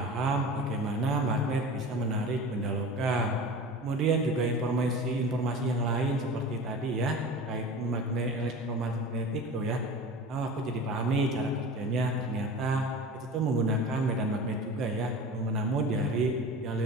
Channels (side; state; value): both; normal; correlation 0.35